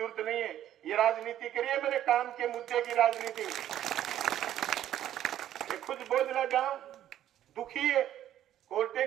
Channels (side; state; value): left; quieter; 11.8 dB